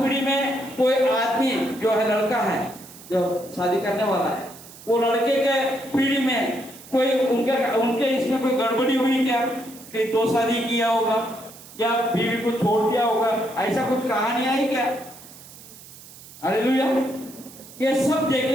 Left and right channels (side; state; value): right; noise; hiss, 19 dB below the sound